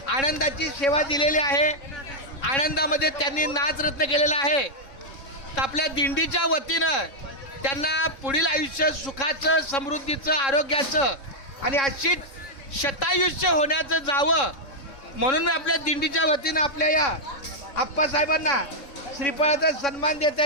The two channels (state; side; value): late; right; 3.6 ms